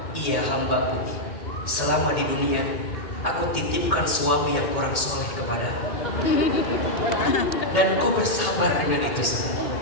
iya hambaku, selama di dunia aku titipkan suami yang kurang soleh kepadamu, dan kau bersabar dengan itu semua.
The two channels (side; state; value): right; late; 2.2 ms